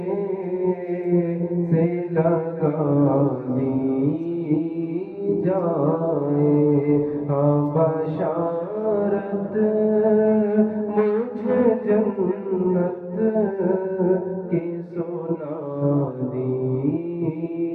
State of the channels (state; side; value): identical; both; correlation 1.00